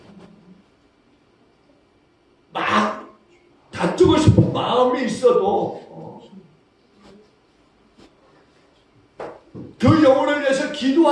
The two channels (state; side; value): identical; both; correlation 1.00